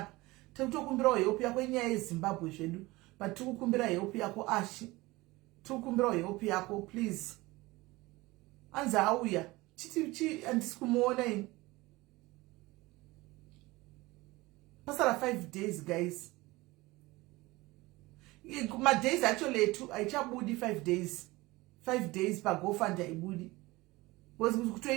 tikutokumbirawo help yako inyaya yeZimbabwe zvedu but tikukumbira help yako Ashi tikukumbirawo help yako please hanzi auya chiti handisi kumuona ini pasara 5 days guys madays actually etu haichabudi 5 days pagofund haibudi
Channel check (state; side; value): quieter; left; 21.0 dB